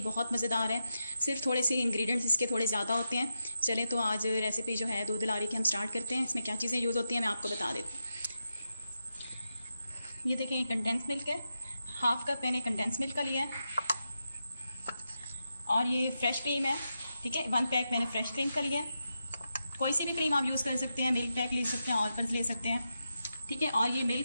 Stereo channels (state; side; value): inverted; both; correlation -0.88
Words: बहुत मज़ेदार है। सिर्फ थोड़े से इंग्रेडिएंट्स इसके थोड़े ज़्यादा होते हैं। चलें तो आज रेसिपी जो है दूध दुलारी की हम स्टार्ट करते हैं। इसमें क्या चीज़ें यूज़ होती हैं मैं आपको बता देती हूँ। ये देखें, ये कंडेंस मिल्क है। हाफ़ कप मैंने कंडेंस मिल्क का लिया है। और ये फ्रेश क्रीम है। ठीक है, 1 पैक मैंने फ्रेश क्रीम का लिया है। कोई सी भी क्रीम आप यूज़ कर सकते हैं, मिल्क पैक ले सकते हैं, ऑलपर्स ले सकते हैं। ठीक है, और ये